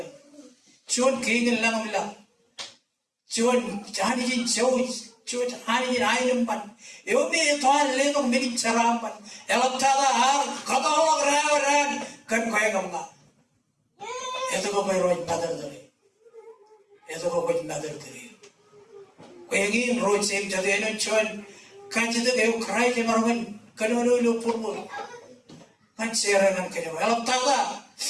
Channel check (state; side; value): identical; both; correlation 1.00